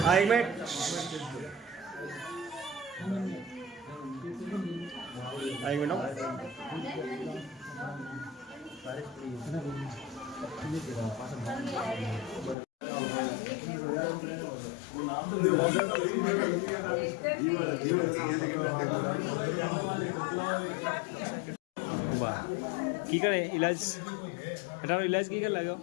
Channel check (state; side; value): drops out; right; at 12.6 s